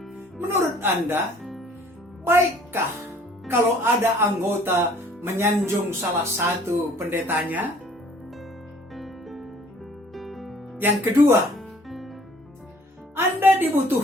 Menurut Anda, baikkah kalau ada anggota menyanjung salah satu pendetanya? Yang kedua, Anda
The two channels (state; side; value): normal; both; correlation 0.56